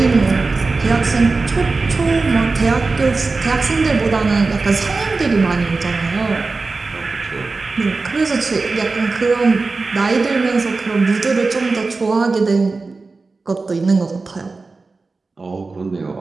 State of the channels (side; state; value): left; quieter; 3.9 dB